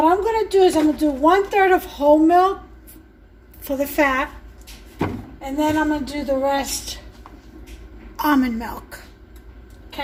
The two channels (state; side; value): identical; both; correlation 1.00